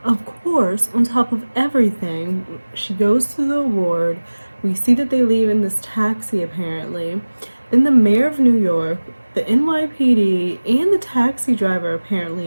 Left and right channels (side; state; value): both; inverted; correlation -1.00